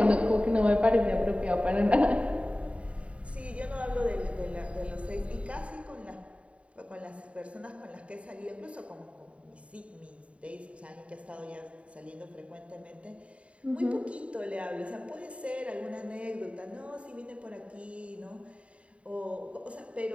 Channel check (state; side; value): late; left; 0.063 ms